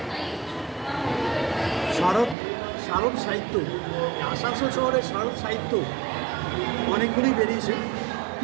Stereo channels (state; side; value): drops out; left; at 2.4 s